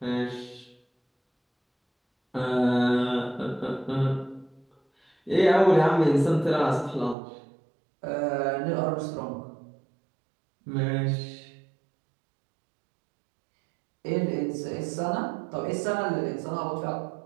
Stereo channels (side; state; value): left; drops out; at 7.2 s